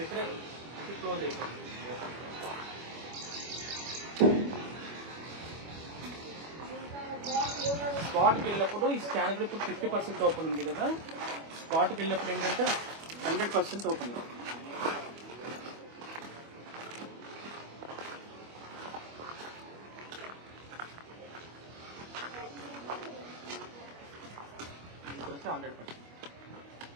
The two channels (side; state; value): left; late; 25 ms